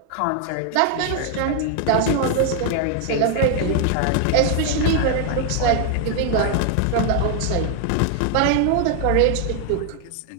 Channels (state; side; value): different; both; correlation 0.00